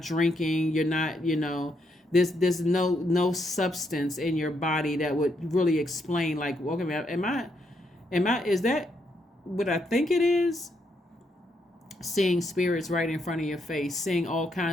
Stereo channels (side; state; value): both; normal; correlation 0.77